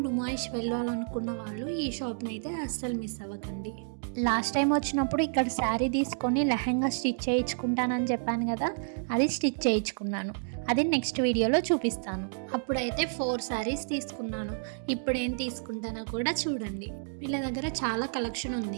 నుమాయిష్ వెళ్ళాలనుకున్న వాళ్ళు ఈ షాప్‌ని అయితే అస్సలు మిస్ అవ్వకండి. లాస్ట్ టైం వచ్చినప్పుడు ఇక్కడ శారీ తీసుకొని లెహంగా స్టిచ్ చేయించుకుంటానని చెప్పాను కదా, అది స్టిచ్ చేయించుకున్నాను. అది నెక్స్ట్ వీడియోలో చూపిస్తాను. అప్పుడైతే 4 శారీస్ తీసుకున్నాను. ఇప్పుడు ఏం తీసుకుంటానో కూడా చూడండి. వీళ్ళ దగ్గర చాలా కలెక్షన్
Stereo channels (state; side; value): silent; left; digital silence